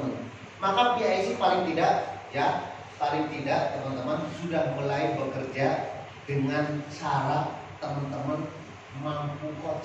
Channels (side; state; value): both; identical; correlation 1.00